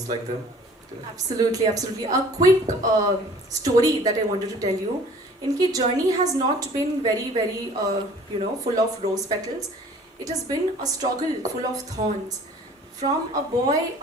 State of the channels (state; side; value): normal; both; correlation 0.50